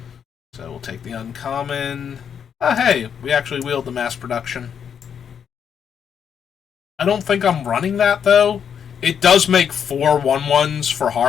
So we'll take the uncommon. Oh, hey, we actually wheeled the mass production. I don't think I'm running that, though. It does make 4 1/1s for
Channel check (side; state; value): right; quieter; 7.8 dB